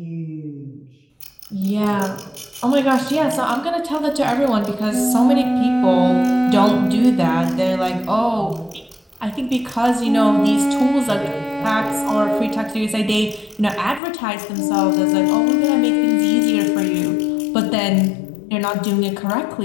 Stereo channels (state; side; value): drops out; right; at 14.0 s